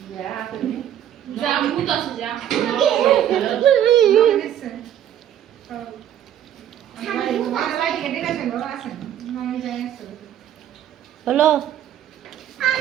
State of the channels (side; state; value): left; quieter; 10.7 dB